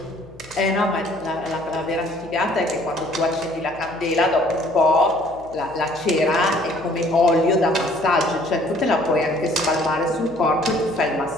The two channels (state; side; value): noise; left; hum, 23 dB below the sound